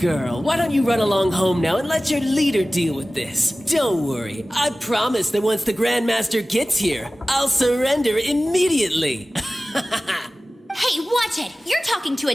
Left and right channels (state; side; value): normal; both; correlation 0.96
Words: why don't you run along home now and let your leader deal with this? Don't worry, I promise that once the Grandmaster gets here, I'll surrender immediately. Hey, watch it! You're talking to